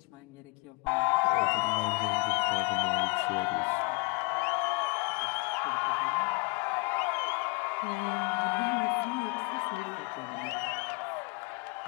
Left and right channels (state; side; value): quieter; right; 30.4 dB